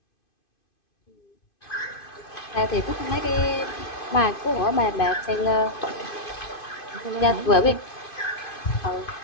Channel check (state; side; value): late; right; 2.5 ms